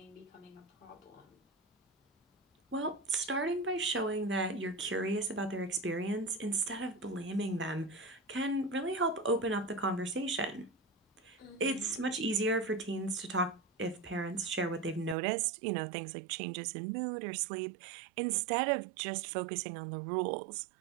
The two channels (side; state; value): left; drops out; at 15.2 s